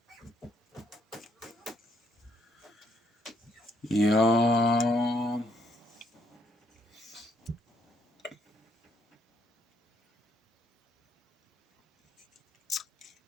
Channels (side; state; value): both; normal; correlation 0.70